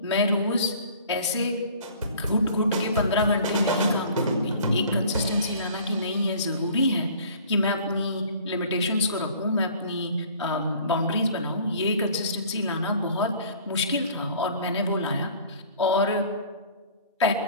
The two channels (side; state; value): both; inverted; correlation -0.49